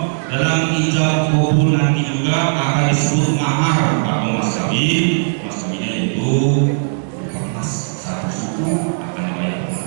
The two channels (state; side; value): silent; left; 67 dB below the other